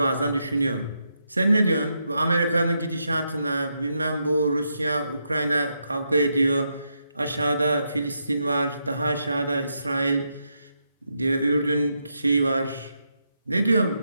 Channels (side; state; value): both; inverted; correlation -0.82